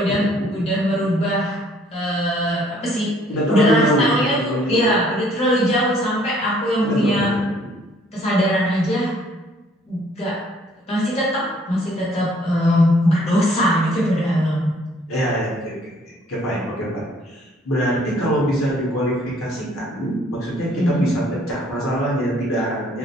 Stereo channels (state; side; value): normal; both; correlation 0.61